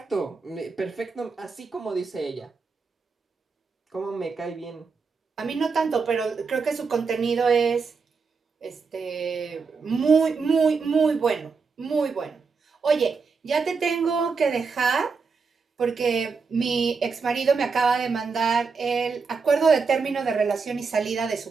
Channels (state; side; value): quieter; left; 4.9 dB